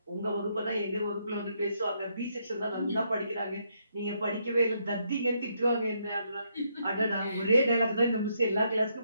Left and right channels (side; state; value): both; inverted; correlation -0.75